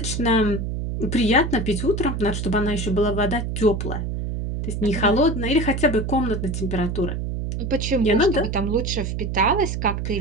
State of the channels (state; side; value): noise; right; hum, 3 dB below the sound